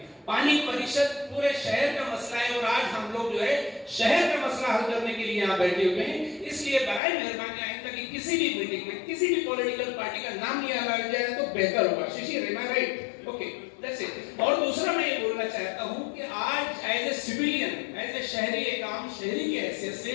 पानी परिषद पूरे शहर का मसला है और आज हम लोग जो है शहर का मसला हल करने के लिए यहाँ बैठे हुए हैं। इसलिए बराए मेहरबानी आइंदा कि किसी भी मीटिंग में किसी भी पॉलिटिकल पार्टी का नाम लिया जाए तो बेहतर होगा। Shishir, am I right? Okay, that's it. और दूसरा मैं ये बोलना चाहता हूँ कि आज as a civilian, as a शहरी, एक आम शहरी की हैसियत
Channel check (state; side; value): drops out; right; at 7.0 s